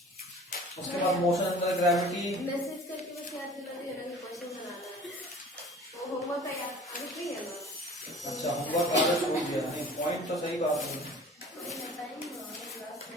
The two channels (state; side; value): normal; both; correlation 0.45